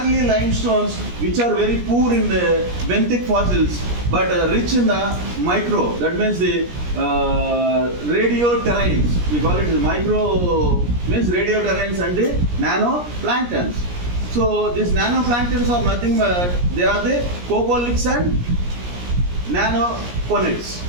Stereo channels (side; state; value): left; late; 17 ms